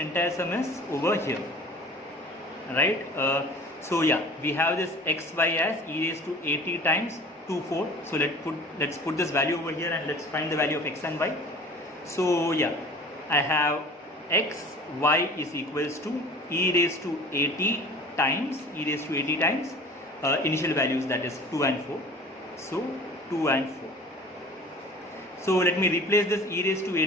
sum is over here, right? So yeah, we have this xy as e raised to at times 2, 4. So let's put this value over here, and let's find the value of x and y. So yeah, I have x, y is equals to e raised to at times initial values, that is 2 and 4. So 2 and 4. So let me replace this e raised to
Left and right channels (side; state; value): both; normal; correlation 0.43